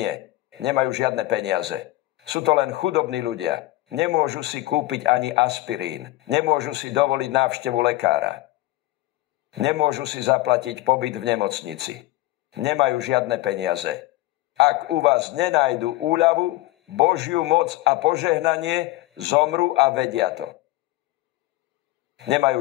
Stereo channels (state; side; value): quieter; right; 17.9 dB